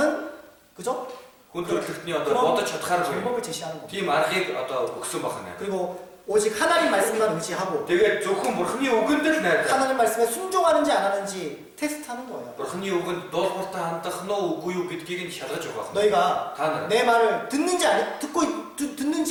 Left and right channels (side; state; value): both; identical; correlation 1.00